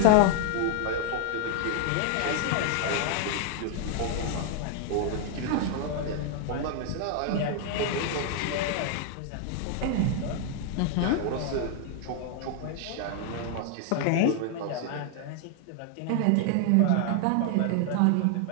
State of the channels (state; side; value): different; both; correlation 0.00